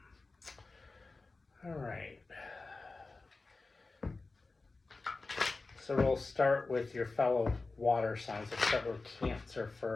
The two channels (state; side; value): quieter; right; 3.6 dB